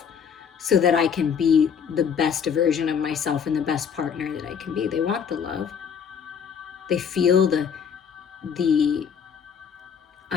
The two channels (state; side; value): quieter; right; 7.1 dB